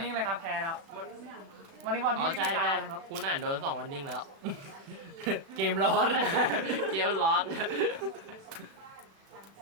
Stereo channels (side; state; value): left; late; 36 ms